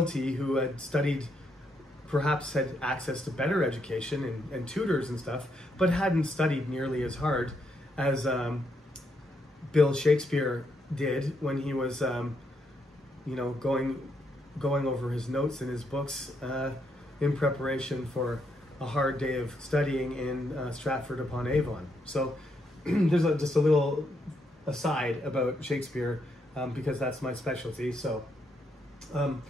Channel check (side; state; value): both; normal; correlation 0.77